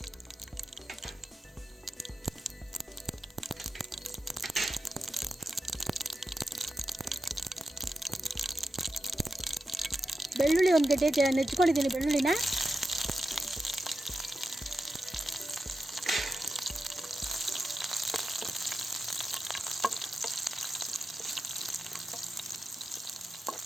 ಬೆಳ್ಳುಳ್ಳಿ ಒಂದು ಗಡ್ಡೆ ನೆಚ್ಕೊಂಡಿದ್ದೀನಿ ಬೆಳ್ಳುಳ್ಳಿನ.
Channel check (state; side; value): normal; both; correlation 0.90